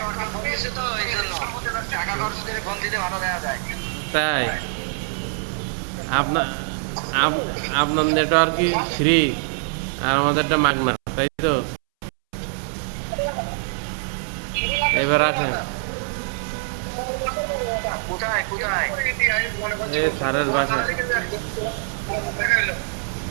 ফোন দিছে তো এই জন্য। টাকা খরচ করে ফোন দিলে ভালো দেখা যায়। তাই আপনার আপনার নেটওয়ার্কই ফ্রি আর আমাদেরটা মাগনা, তাই তো? এবার আসেন। কোথায় কোথায়? সারের বাসে।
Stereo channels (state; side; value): silent; left; 63 dB below the other